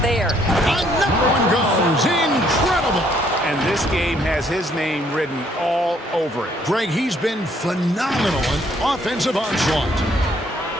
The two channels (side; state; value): both; normal; correlation 0.66